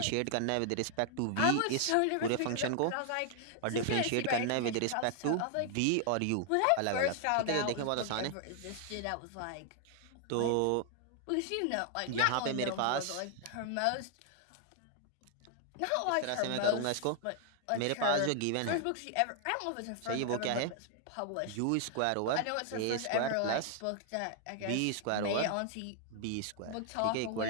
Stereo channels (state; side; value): different; both; correlation 0.00